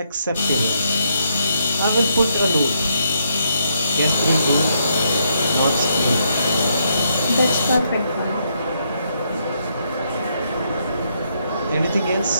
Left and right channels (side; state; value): both; inverted; correlation -0.75